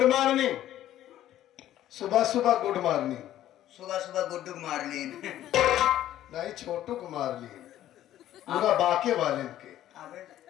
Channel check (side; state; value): right; quieter; 12.7 dB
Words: मॉर्निंग सुबह सुबह गुड मॉर्निंग सुबह सुबह गुड्डू मार लीन नहीं छोटू को मार लिए पूरा बाके वाले के अबे